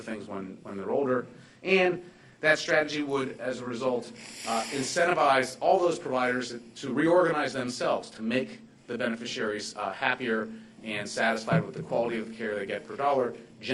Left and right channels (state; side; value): identical; both; correlation 1.00